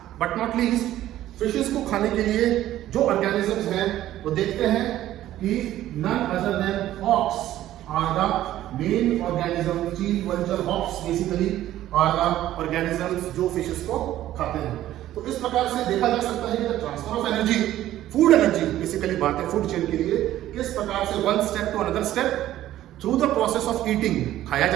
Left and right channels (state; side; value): quieter; left; 13.5 dB